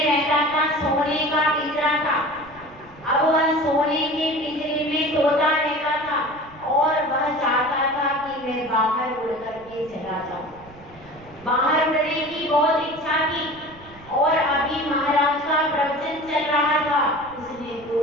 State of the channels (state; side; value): noise; right; rumble, 23 dB below the sound